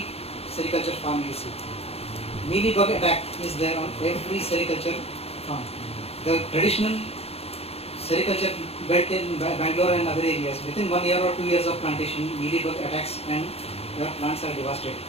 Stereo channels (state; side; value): late; right; 0.29 ms